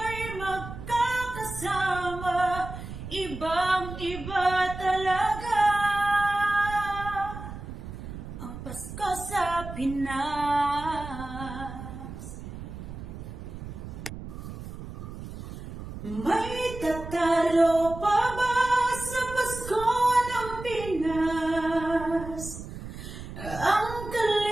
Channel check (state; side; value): noise; right; rumble, 10 dB below the sound